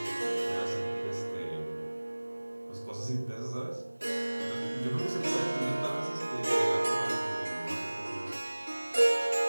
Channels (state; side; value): inverted; both; correlation -1.00